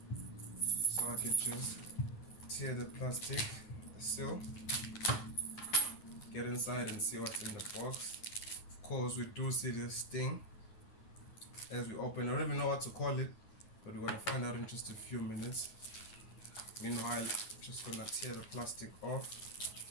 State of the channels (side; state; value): right; late; 9.5 ms